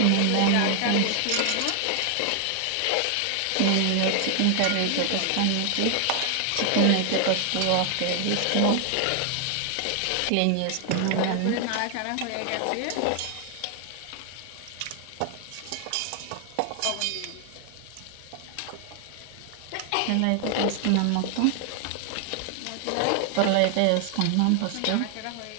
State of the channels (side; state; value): both; different; correlation 0.00